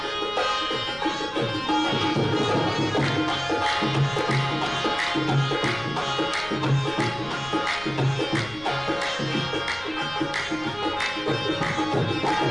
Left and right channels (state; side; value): noise; left; rumble, 20 dB below the sound